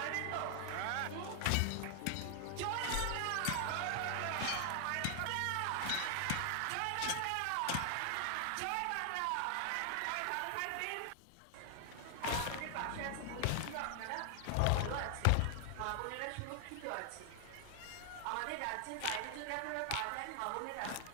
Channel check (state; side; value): different; both; correlation 0.00